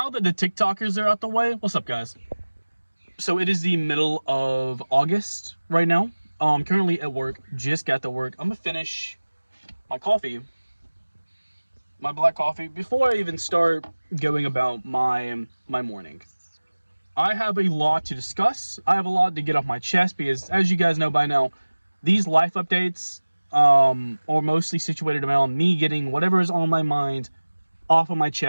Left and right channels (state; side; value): inverted; both; correlation -1.00